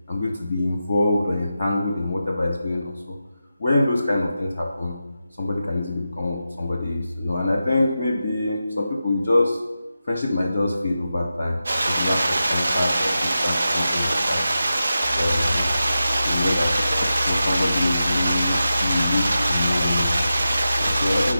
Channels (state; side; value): inverted; both; correlation -0.91